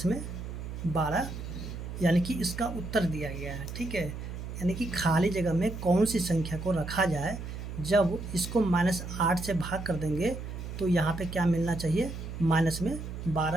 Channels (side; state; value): right; noise; hum, 8 dB below the sound